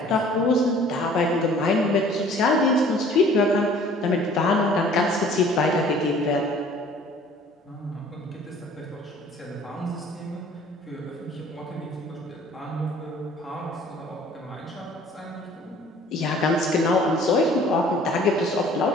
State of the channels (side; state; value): both; normal; correlation 0.52